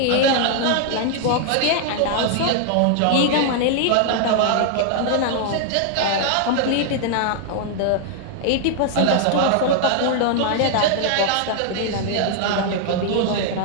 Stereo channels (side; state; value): both; different; correlation 0.00